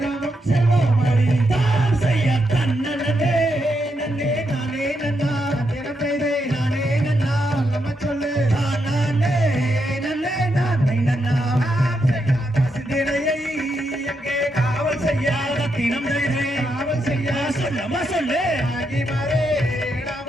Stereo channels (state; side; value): normal; both; correlation 0.82